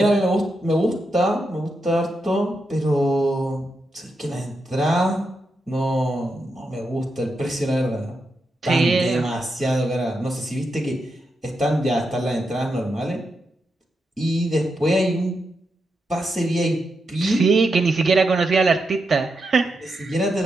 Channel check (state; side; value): normal; both; correlation 0.85